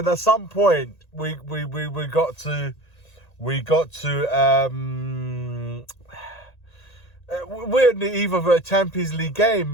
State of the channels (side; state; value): right; late; 1.9 ms